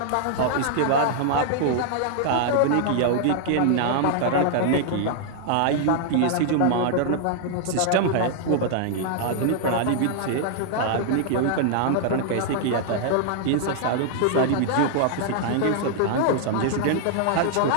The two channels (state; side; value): different; both; correlation 0.00